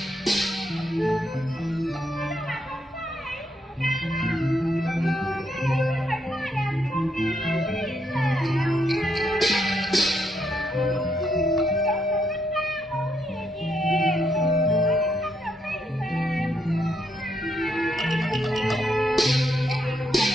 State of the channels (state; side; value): normal; both; correlation 0.77